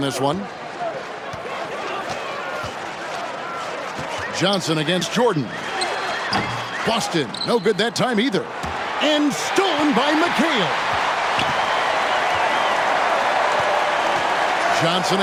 this one. Johnson against Jordan. Boston, no good that time either. And stolen by McHale. Johnson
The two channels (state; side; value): identical; both; correlation 1.00